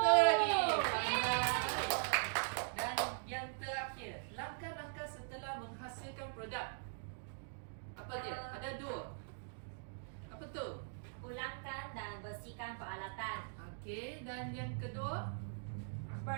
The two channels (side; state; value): left; silent; digital silence